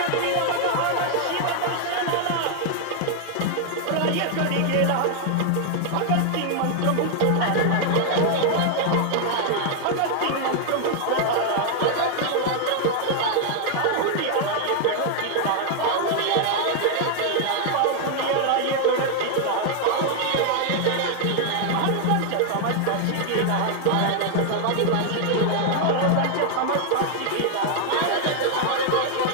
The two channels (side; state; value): both; different; correlation 0.00